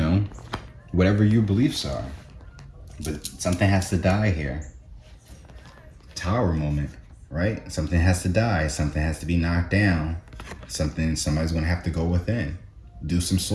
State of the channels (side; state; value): both; identical; correlation 1.00